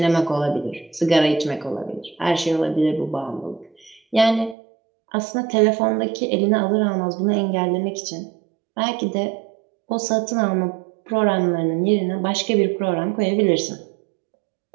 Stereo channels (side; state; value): left; drops out; at 4.5 s